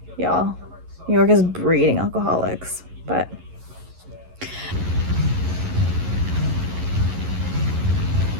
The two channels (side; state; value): left; late; 11 ms